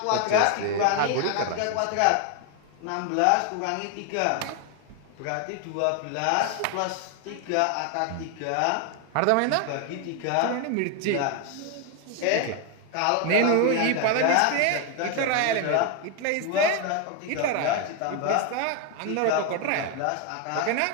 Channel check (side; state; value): both; different; correlation 0.01